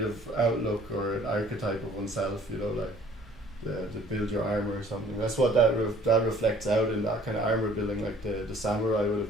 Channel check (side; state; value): right; noise; rumble, 21 dB below the sound